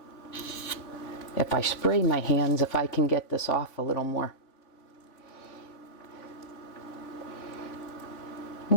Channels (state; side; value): late; right; 3.5 ms